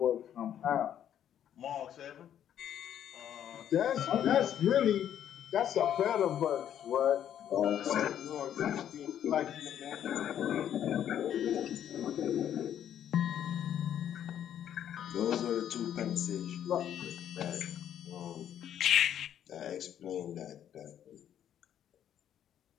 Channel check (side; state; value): right; quieter; 10.1 dB